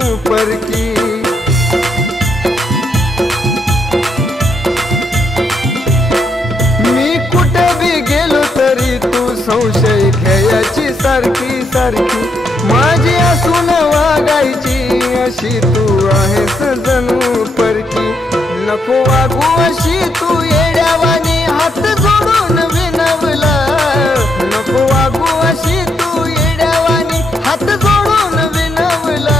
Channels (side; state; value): both; normal; correlation 0.78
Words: परकी। मी कुठे बी गेलो तरी तू संशय घ्यायची सारखी सारखी, माझी असून वागायची अशी तू आहेस जणू परकी। नको वागू अशी तू येड्यावानी हात जोडून विनवला, नको वागू अशी तू येड्यावानी हात जोडून विनवला।